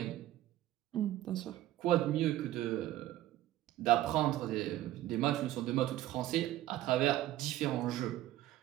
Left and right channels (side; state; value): left; quieter; 14.3 dB